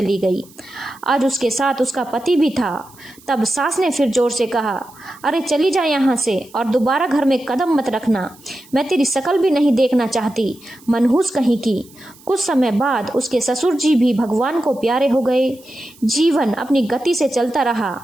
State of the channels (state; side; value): noise; right; hiss, 25 dB below the sound